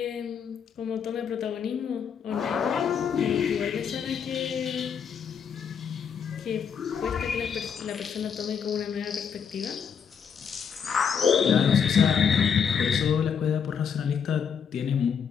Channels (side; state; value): right; quieter; 7.1 dB